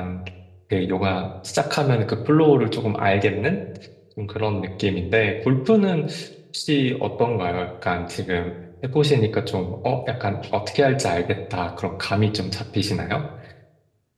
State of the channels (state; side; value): identical; both; correlation 1.00